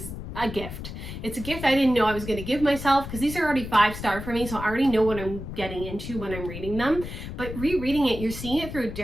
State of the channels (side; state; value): left; noise; rumble, 9 dB below the sound